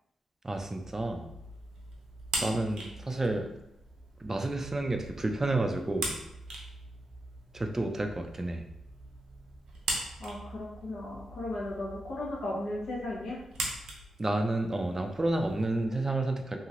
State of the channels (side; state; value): both; normal; correlation 0.87